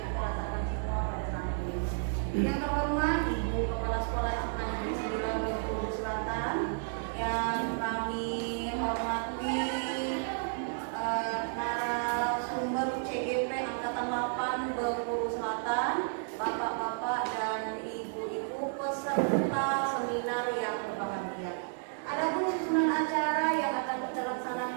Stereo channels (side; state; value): left; silent; digital silence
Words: kita rasakan semua pada saat ini. Yang terhormat Ibu Kepala Sekolah SMA Negeri 9 Bengkulu Selatan, yang kami hormati narasumber CGP Angkatan 8 Bengkulu Selatan, Bapak-bapak dan Ibu-ibu peserta seminar yang berbahagia. Adapun susunan acara yang akan kita